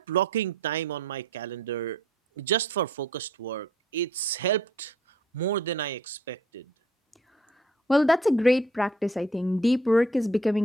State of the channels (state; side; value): normal; both; correlation 0.58